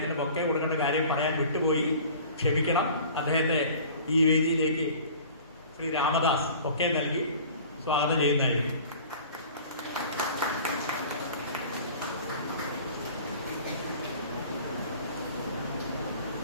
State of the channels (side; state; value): both; inverted; correlation -0.45